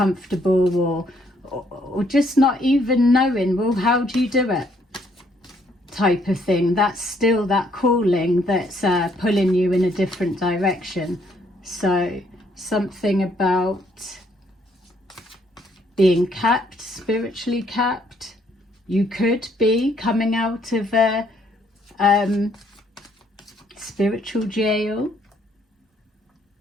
or just not even knowing, well, how do you do it, type of thing, that's still that calling that's pulling you in a different direction. So something about being capped, spiritually capped. You could be coming out of a spiritual jail.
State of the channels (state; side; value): normal; both; correlation 0.68